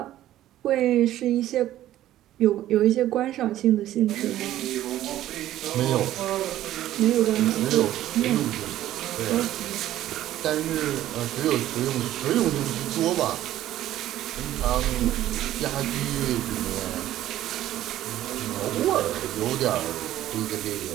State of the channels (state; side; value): quieter; left; 13.4 dB